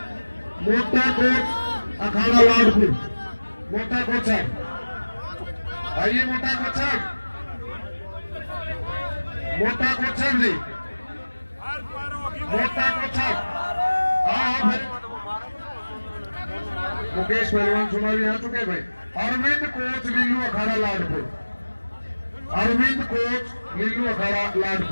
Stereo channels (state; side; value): inverted; both; correlation -1.00